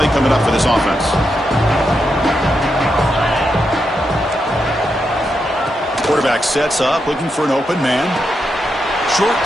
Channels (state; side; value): normal; both; correlation 0.84